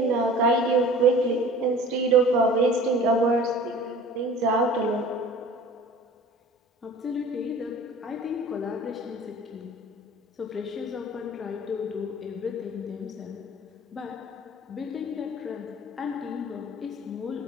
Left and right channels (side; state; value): both; normal; correlation 0.44